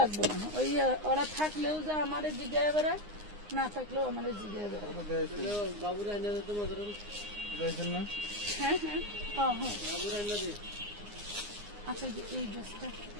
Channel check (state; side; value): late; left; 9.7 ms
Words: লাগবে না। ওই ওরা থাকলেও যা আমাদের জিজ্ঞাসা বেড়ায়, না থাকলেও আমাদের জিজ্ঞাসা বেড়ায়। হ্যাঁ হ্যাঁ হ্যাঁ হ্যাঁ, আচ্ছা এই ড্রেসটা,